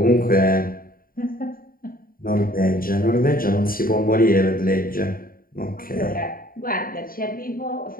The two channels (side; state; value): right; late; 0.42 ms